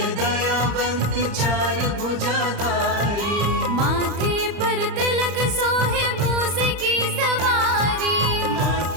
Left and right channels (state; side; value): late; left; 34 ms